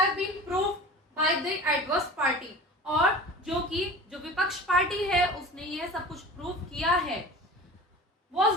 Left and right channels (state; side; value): normal; both; correlation 0.37